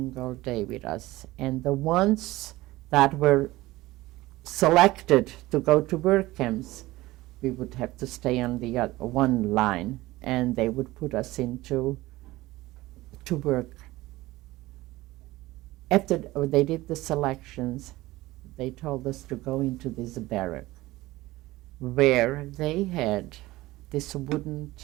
day with us, and the ones that were selected to go to work camps, we would have to stay on the one line, and they would put us into to work. After they did the selections, they told us to go into this barrack where they had this wooden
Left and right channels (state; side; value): quieter; left; 18.5 dB